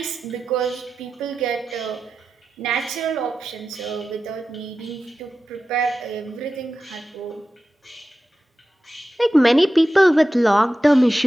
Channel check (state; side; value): normal; both; correlation 0.93